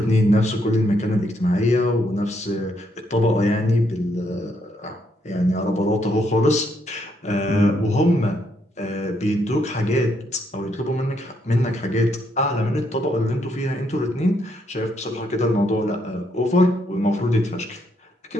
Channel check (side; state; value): both; normal; correlation 0.75